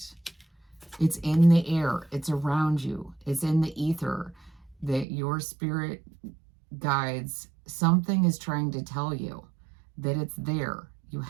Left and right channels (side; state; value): left; drops out; at 5.1 s